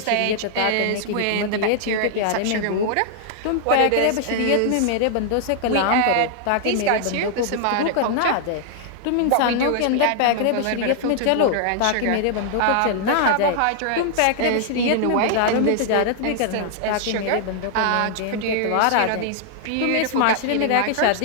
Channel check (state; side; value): different; both; correlation -0.01